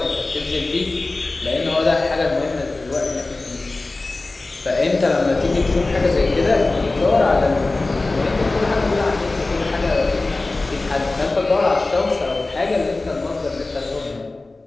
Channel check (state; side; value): quieter; right; 3.2 dB